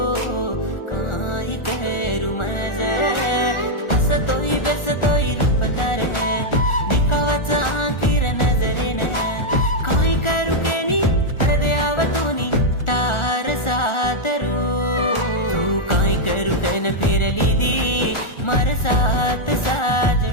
काई करू मज हसतोय बेसतोय रूप तारे दिखावाचा आखिर नजरेने काई करू केनी हृदयावतूनी तार सातरू तू काई करू कैन फिरली दी मार साथ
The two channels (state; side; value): late; right; 1.4 ms